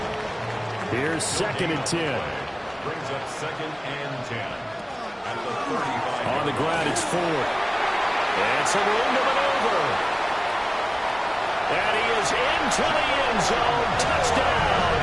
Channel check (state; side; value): identical; both; correlation 1.00